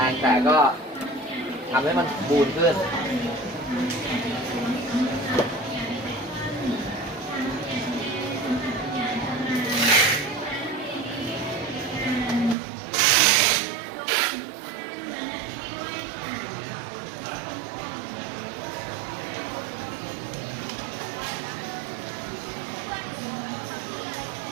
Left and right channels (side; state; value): left; drops out; at 12.6 s